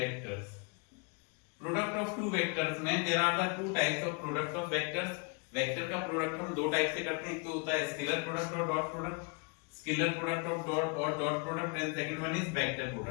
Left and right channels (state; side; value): quieter; right; 33.5 dB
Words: Product of two vectors में there are the two types of product of vectors. Vector का product हम दो type से करते हैं, एक तो होता है स्केलर प्रोडक्ट और dot product. Scalar product of dot और dot product, and second one is vector